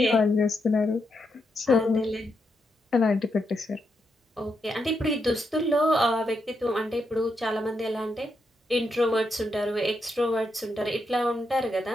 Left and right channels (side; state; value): both; normal; correlation 0.82